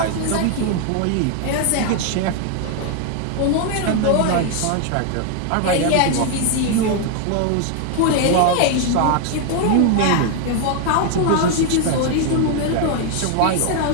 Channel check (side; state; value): both; different; correlation 0.01